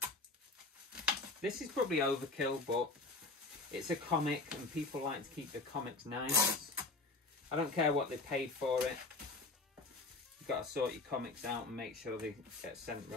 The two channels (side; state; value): right; quieter; 3.4 dB